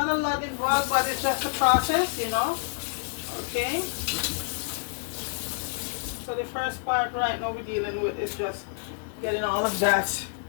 a lot involved, but it's just a process, Okay. So the first part right now we're dealing with is just getting all of that,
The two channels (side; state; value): right; silent; 60 dB below the other